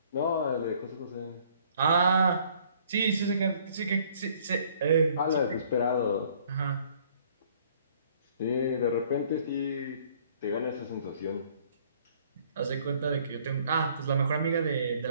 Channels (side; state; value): both; inverted; correlation -0.59